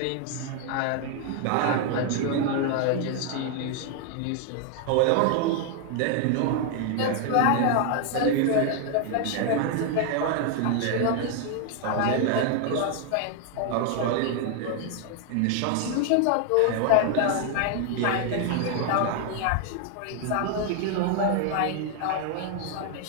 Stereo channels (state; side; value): different; both; correlation 0.00